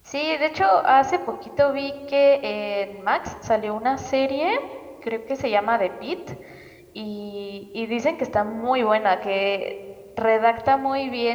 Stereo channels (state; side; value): identical; both; correlation 1.00